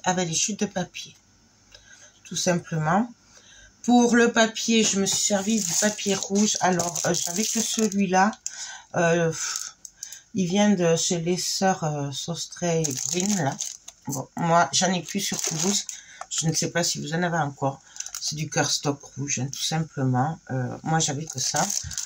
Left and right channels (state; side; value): identical; both; correlation 1.00